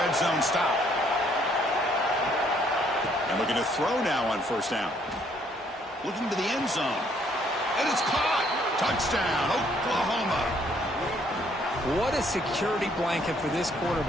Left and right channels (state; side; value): normal; both; correlation 0.66